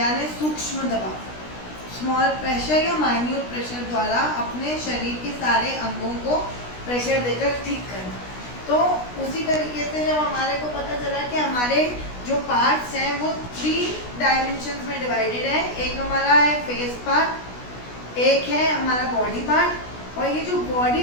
सूक्ष्म दबाव, स्मॉल प्रेशर या माइन्यूट प्रेशर द्वारा अपने शरीर के सारे अंगों को प्रेशर देकर ठीक करना। तो उसी तरीके से जब हमारे को पता चला कि हमारे जो पार्ट्स हैं वो 3 डायमेंशंस में डिवाइडेड है। एक हमारा है फेस पार्ट, एक है हमारा बॉडी पार्ट, और ये जो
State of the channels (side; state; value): right; late; 16 ms